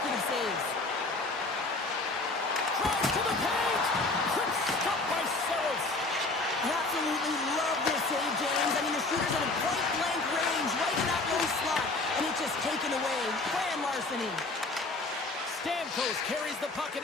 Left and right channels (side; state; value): right; quieter; 3.3 dB